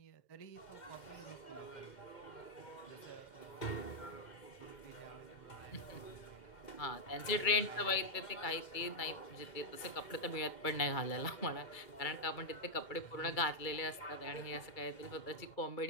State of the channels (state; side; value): late; right; 2.2 ms